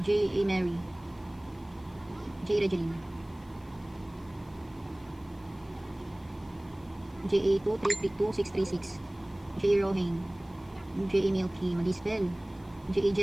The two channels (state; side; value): noise; left; hiss, 30 dB below the sound